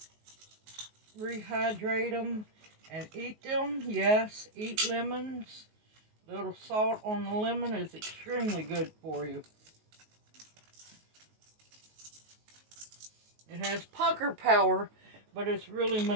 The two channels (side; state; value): left; late; 19 ms